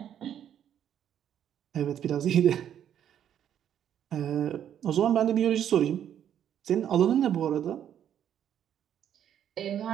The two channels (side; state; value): left; quieter; 9.8 dB